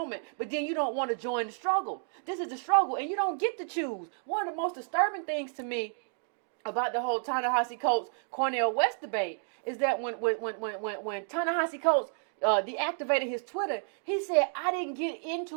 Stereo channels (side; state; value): left; silent; 57 dB below the other